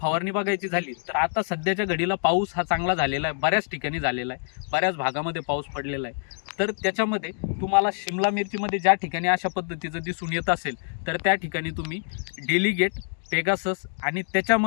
फवारणी बघायची झाली तर आता सध्याच्या घडीला पाऊस हा चांगला झालेला आहे, बऱ्याच ठिकाणी झालेला आहे, बऱ्याच भागामध्ये पाऊस पडलेला आहे. तर त्याच्यामध्ये तुम्हाला शिमला मिरचीमध्ये ज्या ठिकाणी अशा पद्धतीचं दिसून येत असेल तर त्या ठिकाणी तुम्ही डेलिगेट, पेगासस आणि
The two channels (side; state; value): right; silent; digital silence